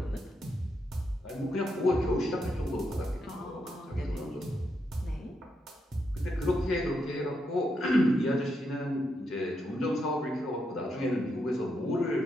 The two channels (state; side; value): normal; both; correlation 0.82